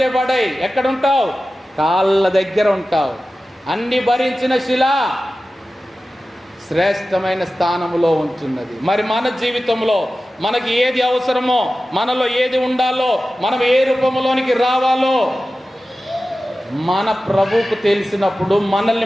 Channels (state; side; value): normal; both; correlation 0.95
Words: పడై. ఎక్కడుంటావు? కాళ్ళ దగ్గర ఉంటావు. అన్ని భరించిన శిల శ్రేష్టమైన స్థానంలో ఉంటున్నది. మరి మన జీవితంలో మనకి ఏది అవసరమో, మనలో ఏది ఉండాలో, మనం ఏ రూపంలోనికి రావాలో మన ప్రభువుకు తెలిసినప్పుడు